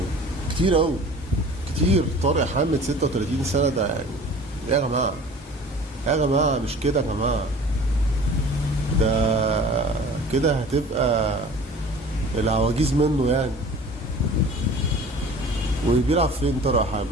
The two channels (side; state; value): both; normal; correlation 0.44